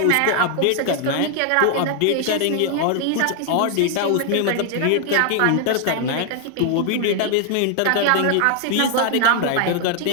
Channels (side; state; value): both; different; correlation 0.00